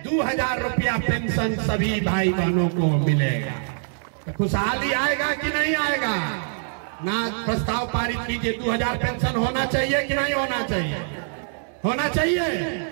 2000 रुपया पेंशन सभी भाई बहनों को मिलेगा। तो खुशहाली आएगा कि नहीं आएगा? ना प्रस्ताव पारित कीजिए। 2000 पेंशन होना चाहिए कि नहीं होना चाहिए? होना चाहिए।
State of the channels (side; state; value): left; silent; digital silence